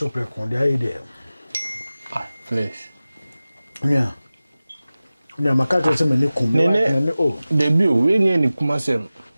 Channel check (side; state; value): both; inverted; correlation -0.97